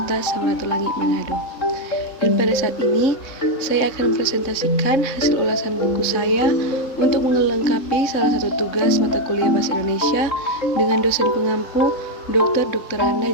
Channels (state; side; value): late; right; 3.6 ms